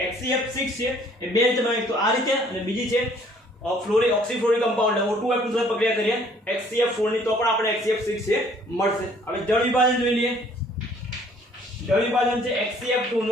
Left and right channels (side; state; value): both; normal; correlation 0.59